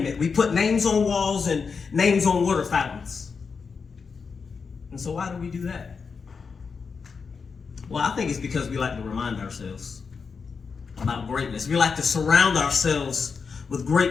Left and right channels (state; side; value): quieter; right; 5.4 dB